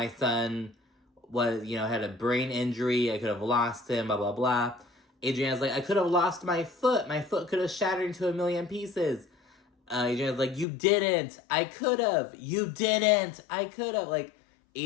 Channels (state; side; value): drops out; right; at 10.7 s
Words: son was, had a brain injury, I could have lost him, blah, blah, blah. Adriana's like, I could have lost my foot. My foot could have shattered into a million pieces. Adriana's like, you didn't. I could have. You didn't. I could have. Like,